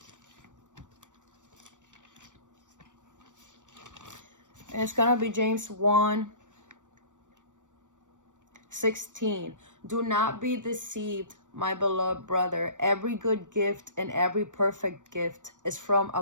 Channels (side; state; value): left; late; 0.86 ms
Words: And it's gonna be James 1:16. Do not be deceived, my beloved brother. Every good gift and every perfect gift is from